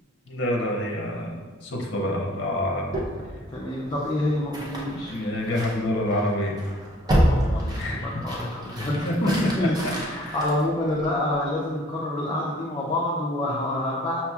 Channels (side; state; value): both; normal; correlation 0.56